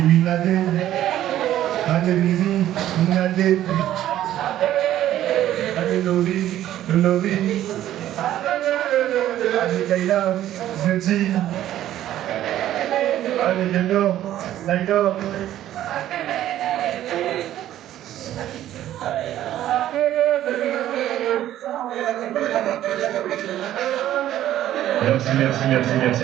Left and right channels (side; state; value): left; quieter; 12.7 dB